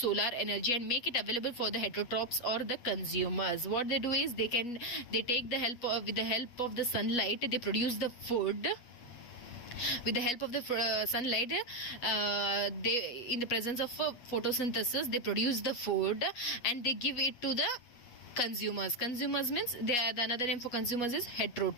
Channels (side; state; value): right; late; 8.3 ms